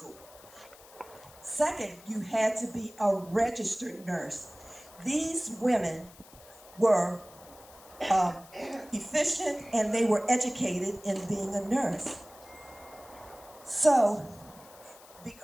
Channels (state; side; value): noise; left; hiss, 22 dB below the sound